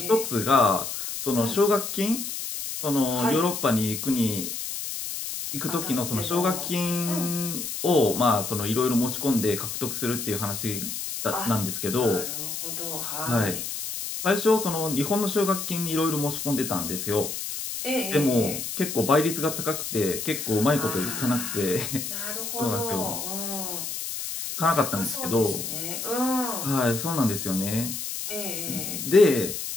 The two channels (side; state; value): left; noise; hiss, 5 dB below the sound